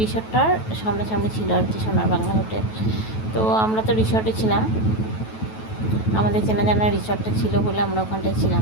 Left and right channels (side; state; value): right; late; 9.2 ms